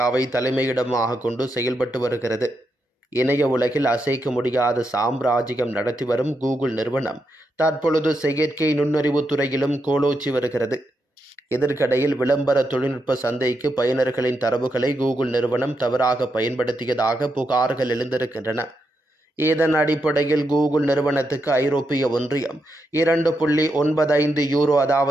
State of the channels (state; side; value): normal; both; correlation 0.83